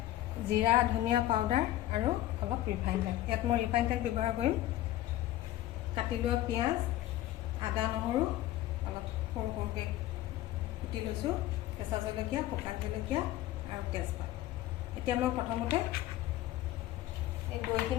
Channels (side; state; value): right; quieter; 14.6 dB